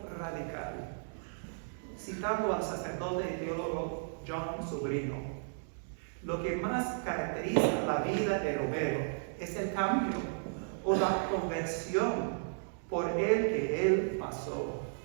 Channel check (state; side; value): silent; left; digital silence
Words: radical. Citando al sacerdote y teólogo John Sobrino, lo que más caracteriza la vida de Romero es el cambio o la conversión por el que él pasó